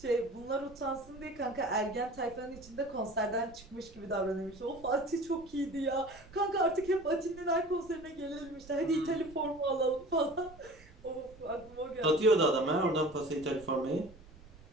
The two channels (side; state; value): right; noise; rumble, 21 dB below the sound